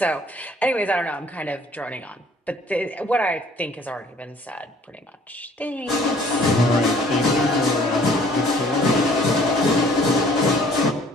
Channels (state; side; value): normal; both; correlation 0.57